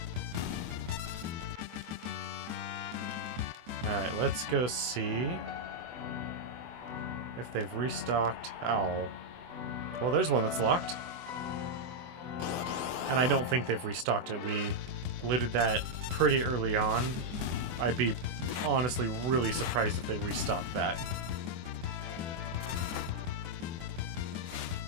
Alright, let's go see if they've restocked Owl. Well, there's one that's locked. And I don't think they've restocked it. We looted that pretty early on. I'd be honestly really surprised if they restocked that.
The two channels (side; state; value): left; late; 24 ms